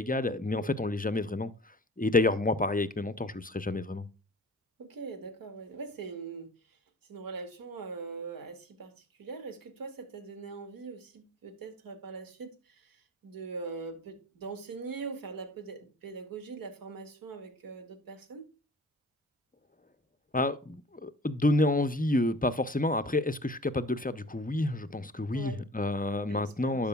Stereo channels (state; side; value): normal; both; correlation 0.45